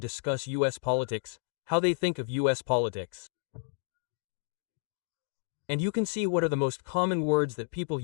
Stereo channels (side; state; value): right; silent; digital silence